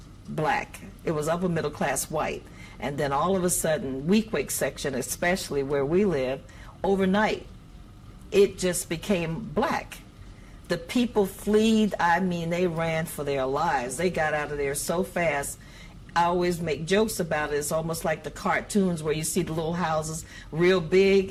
black. It was upper middle class white. And then all of a sudden, Weequahic section, especially where we live, overnight, it just became black. The people fled. I mean, they ran for their lives. They got out of there so fast. I always make jokes about it. It's almost like the cartoons where you see the little houses real big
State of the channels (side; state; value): both; identical; correlation 1.00